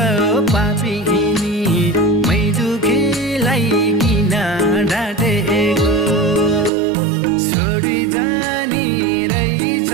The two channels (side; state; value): left; drops out; at 6.7 s